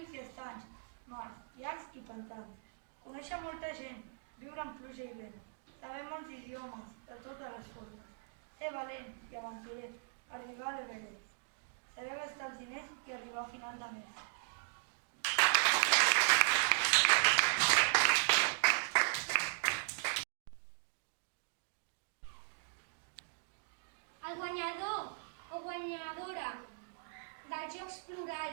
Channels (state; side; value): silent; left; digital silence